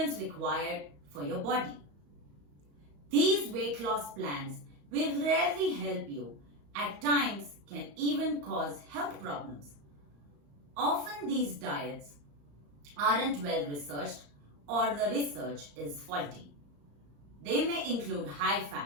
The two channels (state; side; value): late; left; 35 ms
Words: required for your body. These weight loss plans will rarely help you, at times can even cause health problems. Often these diets aren't well researched or the research is faulty. They may include high